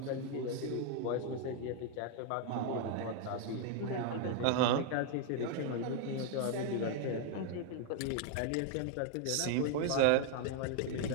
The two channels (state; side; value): different; both; correlation 0.00